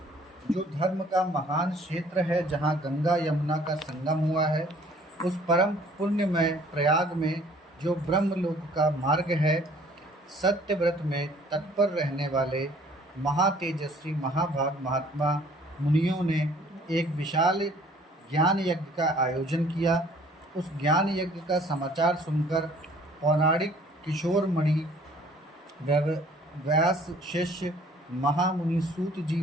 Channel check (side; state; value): both; normal; correlation 0.56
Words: जो धर्म का महान क्षेत्र है, जहाँ गंगा यमुना का संगम हुआ है, उस परम पुण्यमय प्रयाग में जो ब्रह्मलोक का मार्ग है, सत्यव्रत में तत्पर रहने वाले महातेजस्वी महाभाग महात्मा मुनियों ने एक विशाल ज्ञान यज्ञ का आयोजन किया। उस ज्ञान यज्ञ का समाचार सुनकर पौराणिक किशोरमणि व्यास शिष्य महामुनि सूत जी